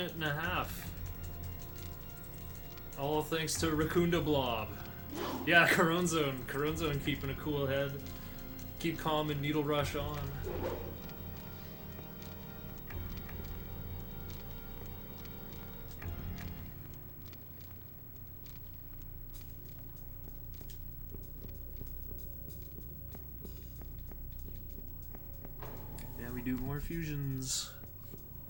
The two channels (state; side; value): identical; both; correlation 1.00